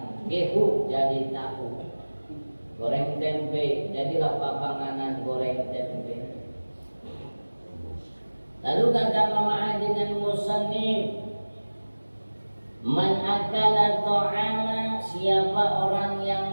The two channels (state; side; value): inverted; both; correlation -1.00